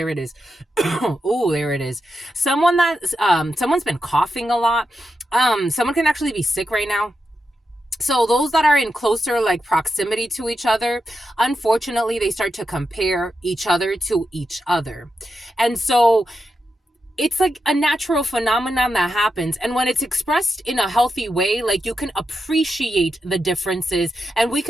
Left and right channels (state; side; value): normal; both; correlation 0.87